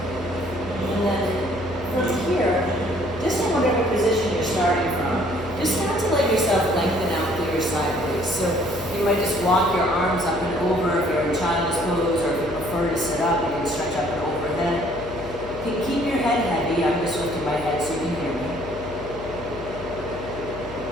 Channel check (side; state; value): left; noise; hum, 14 dB below the sound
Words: And then from here, just in whatever position you're starting from, just start to let yourself lengthen out through your side waist. So you might just walk your arms up and over if you're in child's pose, or if you prefer to sit up, you can stretch up and overhead. Keep your head heavy. I'm just lifting my head so you can hear me.